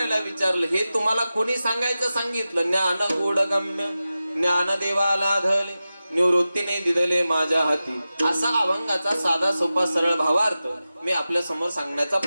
विचारलं, हे तुम्हाला कोणी सांगायचं सांगितलं? ज्ञान गूढ गम्य ज्ञान देवाला धले निवृत्तीने दिदले माझ्या हाती, असा अभंगाचा साधा सोपा सरळ भावार्थ मी आपल्या समोर सांगण्याचा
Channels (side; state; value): both; inverted; correlation -0.94